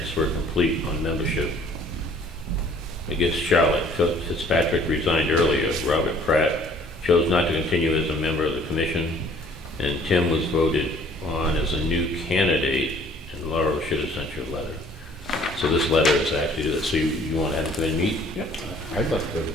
were complete on membership. I guess Charlotte Fitzpatrick resigned earlier. Robert Pratt chose not to continue as a member of the commission, and Tim was voted on as a new candidate, and Laura should have sent you a letter. So this letter is actually to this. So you want to have him come in and meet? I'd like to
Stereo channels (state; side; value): normal; both; correlation 0.56